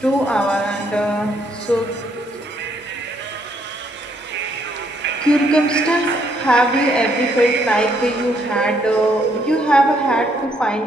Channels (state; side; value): normal; both; correlation 0.71